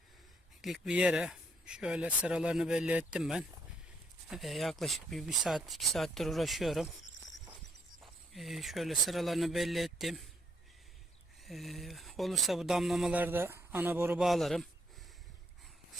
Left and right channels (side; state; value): both; normal; correlation 0.72